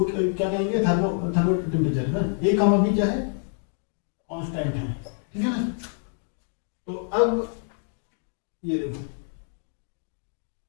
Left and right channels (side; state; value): right; silent; 57 dB below the other